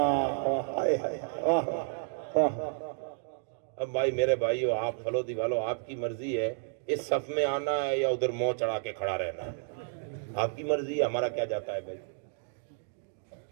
اب بھائی میرے بھائیو، آپ پھلو دیوالو، آپ کی مرضی ہے اس صف میں آنا ہے یا ادھر منہ چڑھا کے کھڑا رہنا ہے، آپ کی مرضی ہے، ہمارا کیا جاتا ہے بھائی۔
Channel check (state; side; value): silent; left; digital silence